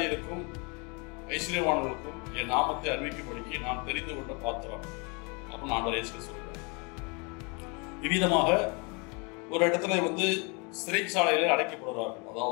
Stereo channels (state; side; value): quieter; right; 31.6 dB